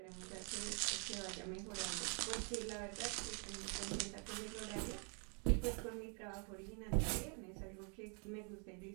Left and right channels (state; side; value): quieter; left; 39.0 dB